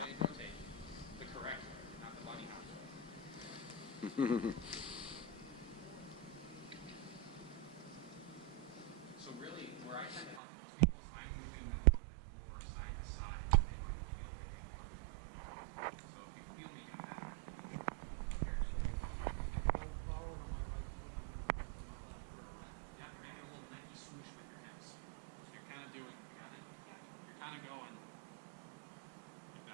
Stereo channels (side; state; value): left; drops out; at 10.4 s